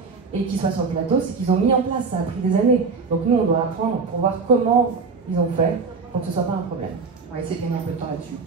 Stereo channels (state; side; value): quieter; left; 4.7 dB